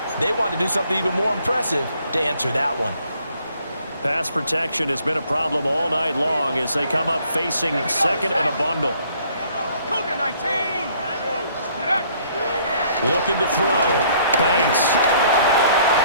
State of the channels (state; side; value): inverted; both; correlation -0.62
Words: they want to do something even more impressive to answer that one. Pass protection has been a problem all night long as they come up facing 2nd and a bundle. Cougar 19. Looking to throw. Banks.